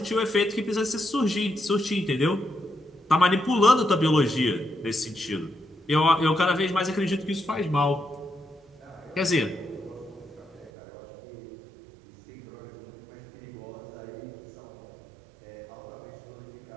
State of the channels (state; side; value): drops out; left; at 10.7 s